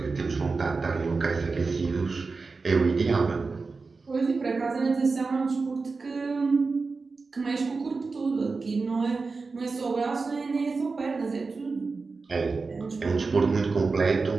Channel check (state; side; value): quieter; left; 4.2 dB